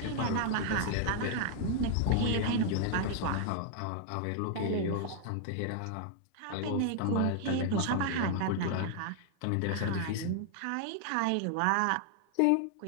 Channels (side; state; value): both; different; correlation 0.00